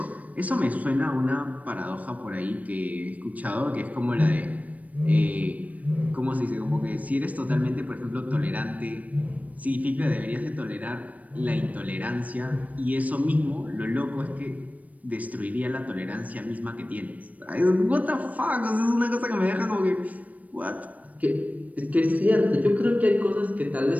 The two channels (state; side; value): late; left; 0.070 ms